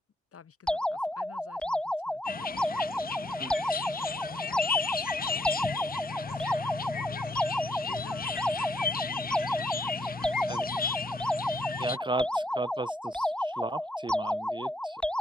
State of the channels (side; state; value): both; normal; correlation 0.75